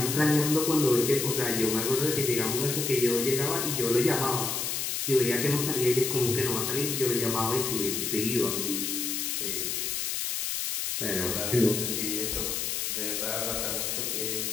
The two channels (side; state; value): left; noise; hiss, 1 dB below the sound